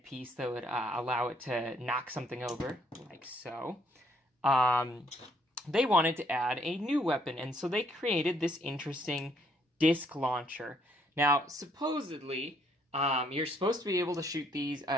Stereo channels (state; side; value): normal; both; correlation 0.68